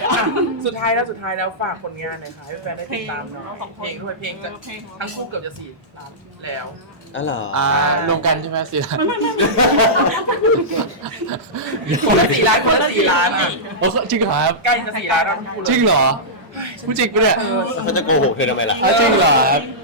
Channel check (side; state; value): both; normal; correlation -0.15